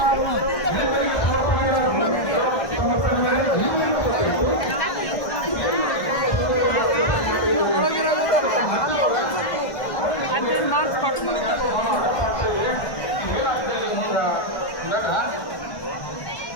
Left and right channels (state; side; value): late; right; 1.6 ms